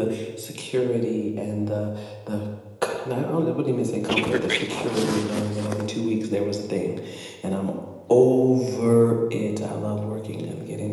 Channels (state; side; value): identical; both; correlation 1.00